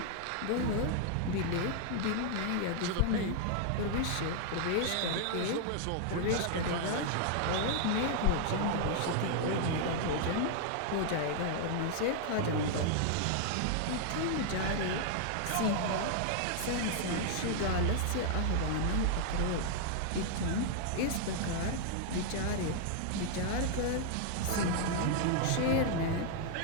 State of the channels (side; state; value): both; different; correlation 0.00